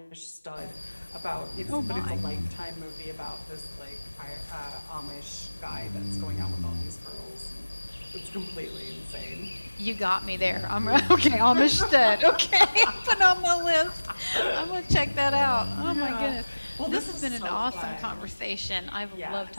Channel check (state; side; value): inverted; both; correlation -1.00